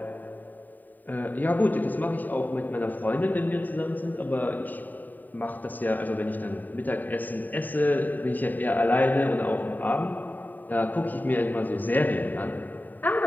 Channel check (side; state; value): right; late; 0.087 ms